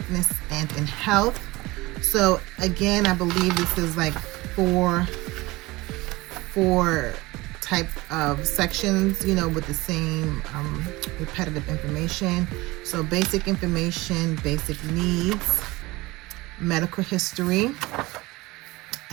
and in Health. So again, I believe this is like four type of sections, with the same repetitive information. So basic information, basic needs, medical history,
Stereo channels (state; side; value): quieter; left; 21.0 dB